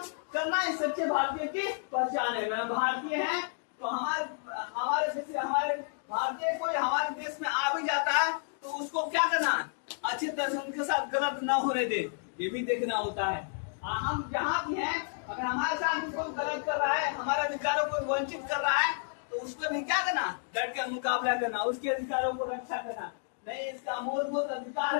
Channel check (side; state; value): right; silent; digital silence